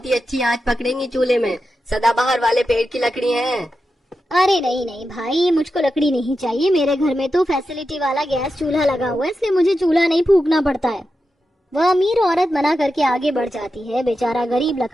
ही अच्छी आंच पकड़ेंगी चूल्हे में, सदाबहार वाले पेड़ की लकड़ी हैं। अरे नहीं नहीं भाई, मुझको लकड़ी नहीं चाहिए। मेरे घर में तो फैसिलिटी वाला गैस चूल्हा लगा हुआ है, इसलिए मुझे चूल्हा नहीं फूकना पड़ता है। वह अमीर औरत मना करके आगे बढ़ जाती है। बेचारा गरीब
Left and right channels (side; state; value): both; normal; correlation 0.90